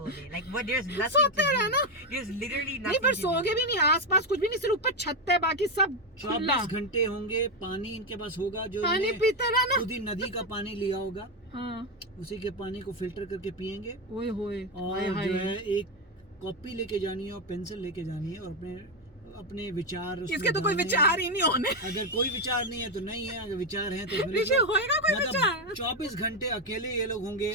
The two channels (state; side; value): normal; both; correlation 0.08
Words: day? Like, what? There's nothing सोते to रहना। do. There's literally नहीं nothing पर to do. सोगे भी नहीं, आसपास कुछ भी नहीं, सिर्फ ऊपर छत है, बाकी सब खुला। 24 घंटे होंगे, पानी इनके पास होगा जो पानी इन्हें पीते रहना। खुद ही नदी का पानी लिया होगा, हाँ उसी के पानी को फिल्टर करके पियेंगे। ओए होए और जो है एक कॉपी लेके जानी है और पेंसिल लेके जानी है और अपने विचार उसमें इसके तो कोई डालने हैं। विचार ही नहीं होने। अगर कोई विचार नहीं है तो नहीं है, अगर विचार है तो फिर ऋषि होएगा कोई मतलब विचार? 24 घंटे अकेले ये लोग होंगे,